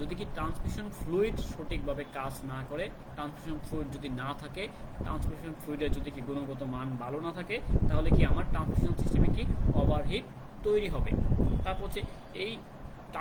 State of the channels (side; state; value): both; identical; correlation 1.00